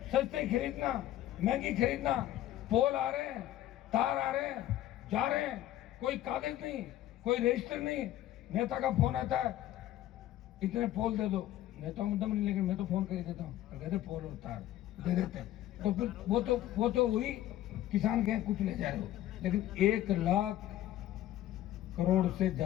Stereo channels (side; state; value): right; quieter; 13.5 dB